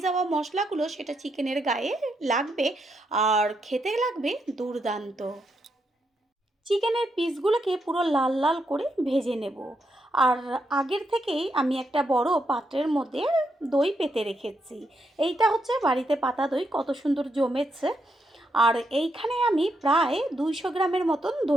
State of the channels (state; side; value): normal; both; correlation 0.80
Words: যাওয়া মশলাগুলো সেটা চিকেনের গায়ে লাগবে আর খেতে লাগবে দুর্দান্ত। চিকেনের পিসগুলোকে পুরো লাল লাল করে ভেজে নেব। আর আগের থেকেই আমি একটা বড় পাত্রের মধ্যে দই পেতে রেখেছি। এইটা হচ্ছে বাড়িতে পাতা দই, কত সুন্দর জমেছে। আর এইখানে আমি প্রায় 200 গ্রামের মতন